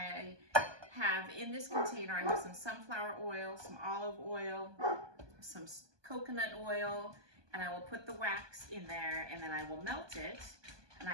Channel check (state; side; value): late; left; 1.2 ms